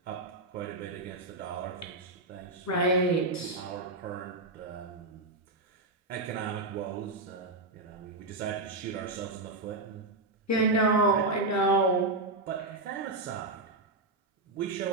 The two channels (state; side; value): quieter; left; 3.0 dB